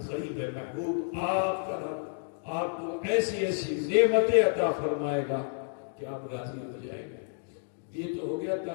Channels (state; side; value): silent; right; digital silence